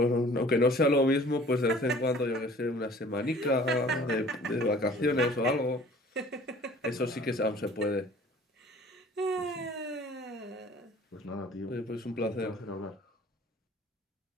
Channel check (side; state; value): both; normal; correlation 0.50